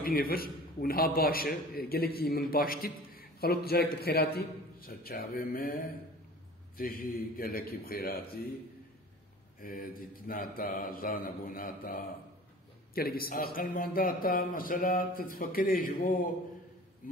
و نها باشه گلکی من باشتید خلوت جارك بخيراتي سرچاوه ما تجي گلکی بخيراتي ديتناتا زانبوناتا أقل مانداتا مثلا تتفكري جبو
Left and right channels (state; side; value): normal; both; correlation 0.43